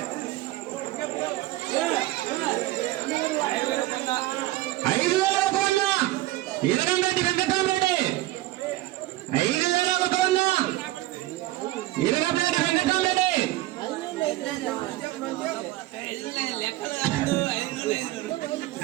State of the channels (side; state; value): left; quieter; 17.1 dB